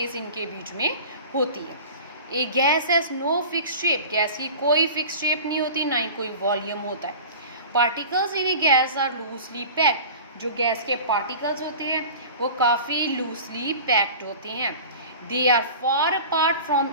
इनके बीच में होती है। A gas has no fix shape. Gas की कोई फिक्स शेप नहीं होती, ना ही कोई वॉल्यूम होता है। Particles in a gas are loosely packed. जो गैस के पार्टिकल्स होते हैं वो काफ़ी लूजली पैक्ड होते हैं। They are far apart from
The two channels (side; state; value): both; inverted; correlation -0.37